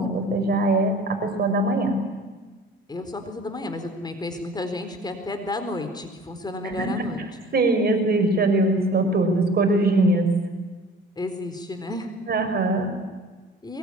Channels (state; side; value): normal; both; correlation 0.45